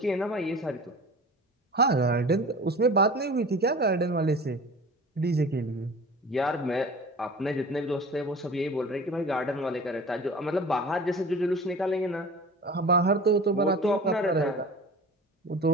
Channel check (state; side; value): normal; both; correlation 0.39